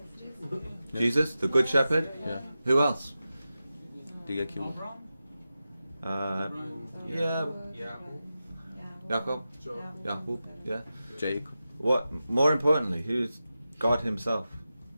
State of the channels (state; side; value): inverted; both; correlation -0.92